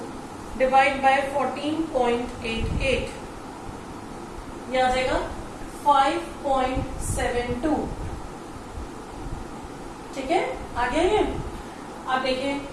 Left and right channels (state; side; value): identical; both; correlation 1.00